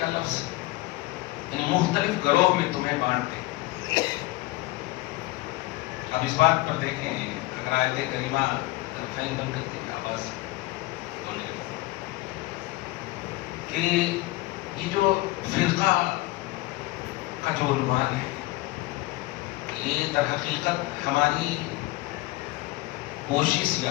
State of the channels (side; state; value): right; quieter; 20.0 dB